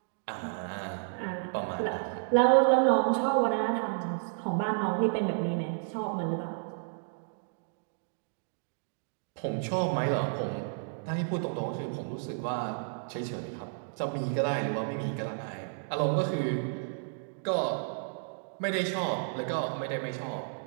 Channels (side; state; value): left; silent; digital silence